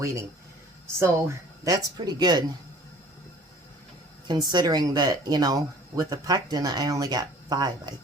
So that's pretty good. Considering that, you know, with the PECTIN, I only got 5, I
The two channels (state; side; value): normal; both; correlation 0.49